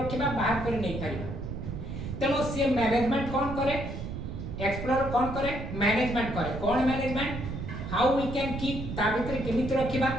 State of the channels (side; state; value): right; noise; rumble, 6 dB below the sound